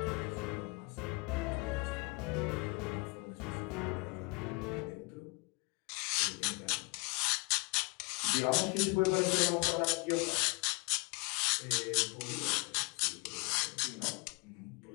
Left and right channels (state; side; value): quieter; right; 29.2 dB